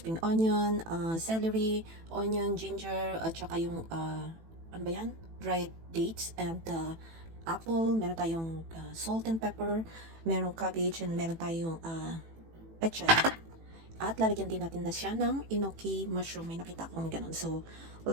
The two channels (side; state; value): left; late; 18 ms